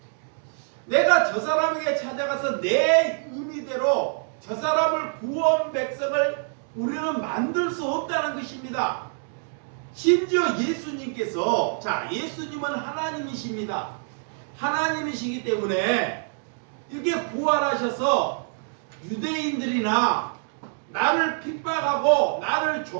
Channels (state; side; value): silent; left; digital silence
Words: 내가 저 사람에게 찾아가서 내 의미대로 저 사람을 구원 백성을 우리는 만들 수 없다는 것입니다. 심지어 예수님께서, 자, 예수님은 하나님이십니다. 하나님이시기 때문에 이렇게 부활하셔서 유대인들이나 나를 핍박하고 나를